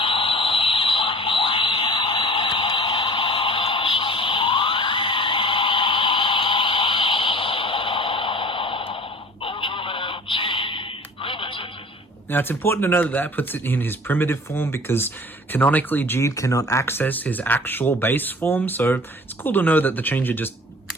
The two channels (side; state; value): both; normal; correlation 0.45